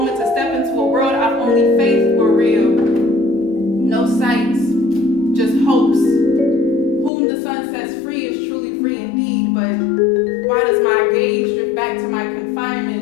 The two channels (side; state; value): right; drops out; at 7.1 s